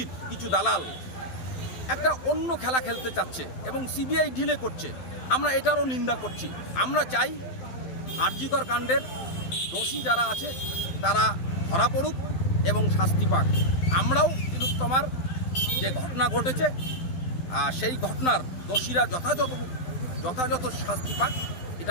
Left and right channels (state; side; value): late; right; 12 ms